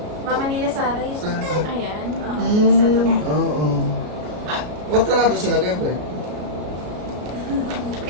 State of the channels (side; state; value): left; late; 33 ms